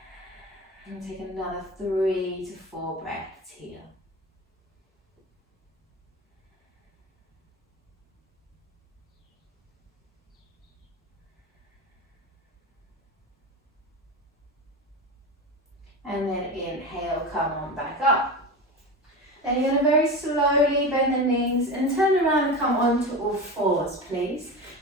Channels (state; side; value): normal; both; correlation 0.26